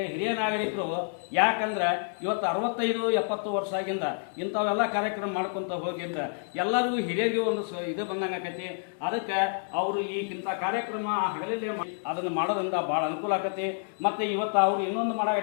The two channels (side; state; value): right; silent; digital silence